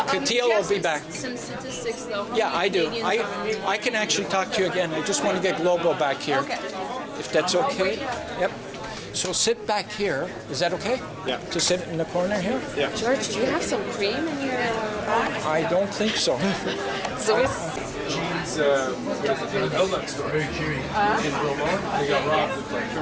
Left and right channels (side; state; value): both; identical; correlation 1.00